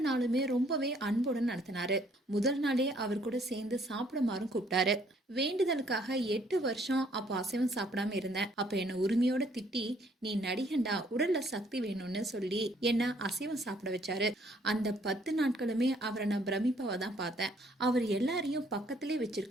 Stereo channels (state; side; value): normal; both; correlation 0.64